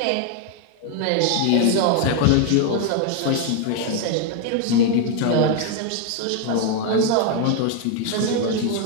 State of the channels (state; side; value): different; both; correlation 0.01